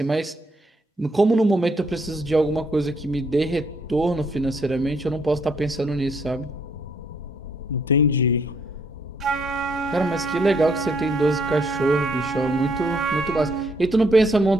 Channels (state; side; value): normal; both; correlation 0.69